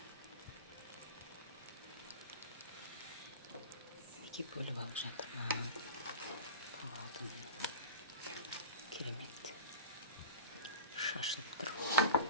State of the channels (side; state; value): both; inverted; correlation -0.32